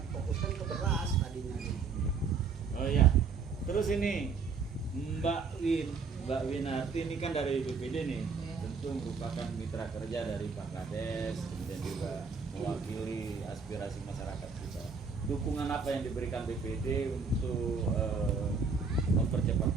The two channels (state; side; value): quieter; left; 5.2 dB